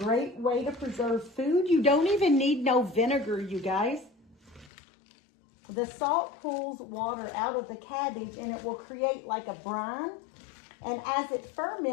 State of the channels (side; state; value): right; drops out; at 4.7 s